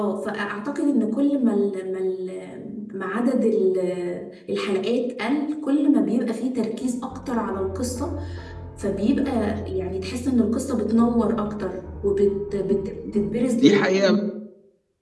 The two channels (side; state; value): both; identical; correlation 1.00